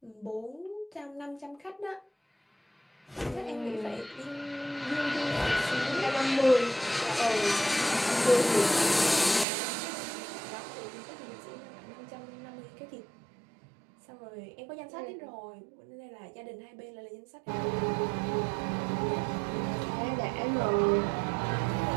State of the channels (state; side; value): drops out; left; at 9.5 s